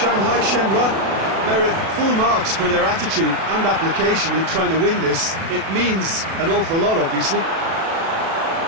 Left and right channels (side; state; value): left; late; 36 ms